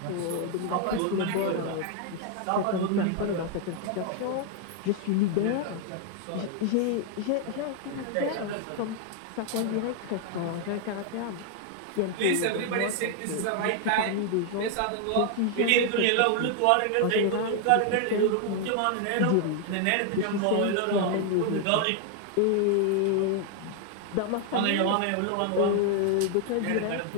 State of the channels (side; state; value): both; different; correlation 0.00